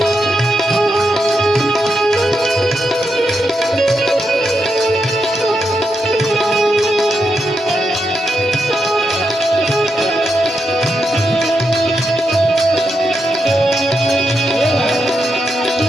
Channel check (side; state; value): both; normal; correlation 0.84